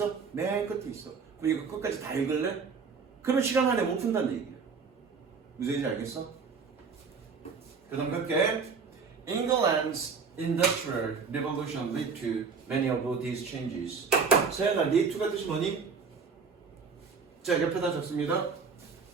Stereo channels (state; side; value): quieter; left; 5.4 dB